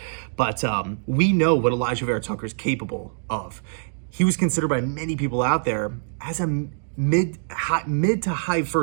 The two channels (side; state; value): left; silent; digital silence